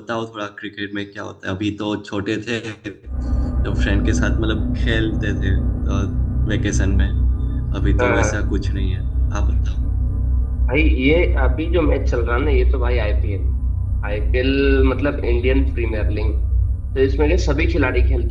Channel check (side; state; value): both; identical; correlation 1.00